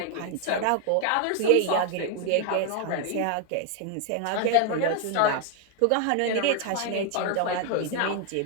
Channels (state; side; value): different; both; correlation 0.00